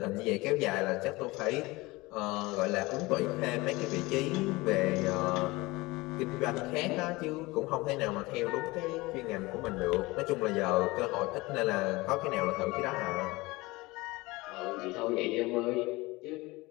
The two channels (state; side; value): quieter; right; 21.9 dB